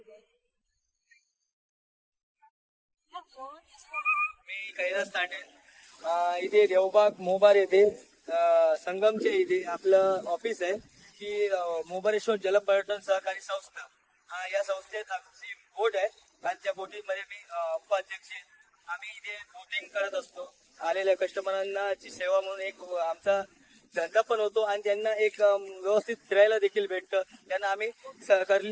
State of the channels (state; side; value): identical; both; correlation 1.00